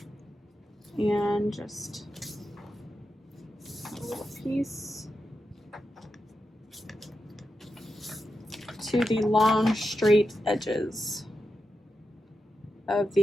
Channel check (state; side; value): normal; both; correlation 0.88